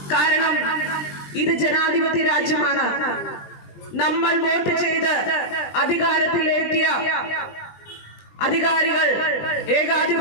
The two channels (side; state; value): right; late; 20 ms